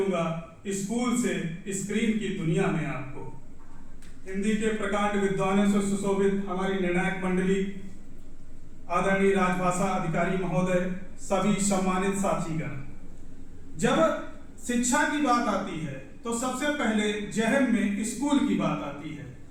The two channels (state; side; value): identical; both; correlation 1.00